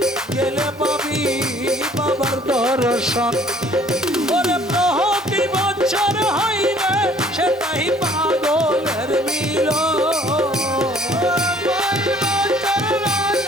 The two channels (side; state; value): both; normal; correlation 0.56